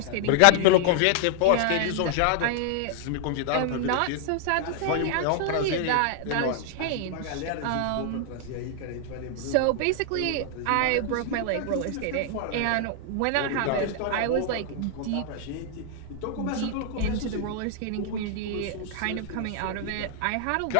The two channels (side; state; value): both; different; correlation 0.00